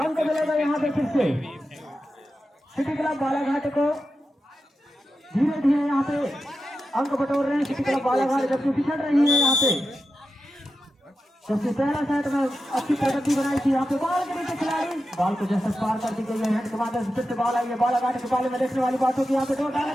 मिलेगा यहाँ पे फिर से सिटी क्लब बालाघाट को, धीरे धीरे यहाँ पे अंक बटोर रहे हैं सिटी क्लब बालाघाट, जबकि पिछड़ रही है यहाँ पे, जबकि पहला सेट में अच्छी प्रगति बनाई थी, यहाँ पे बॉल के नीचे खिलाड़ी, बॉल को जैसे पार कर दी गई है, हेड के माध्यम से फिर से बॉल आई है, बालाघाट के बाले में देखने वाली बात होगी, यहाँ पे डोर डालने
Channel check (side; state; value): both; normal; correlation 0.90